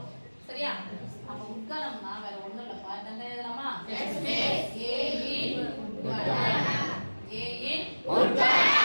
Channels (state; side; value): inverted; both; correlation -1.00